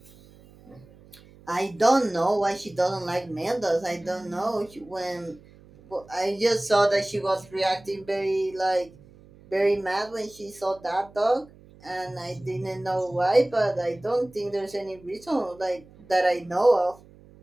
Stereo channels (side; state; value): right; noise; hum, 24 dB below the sound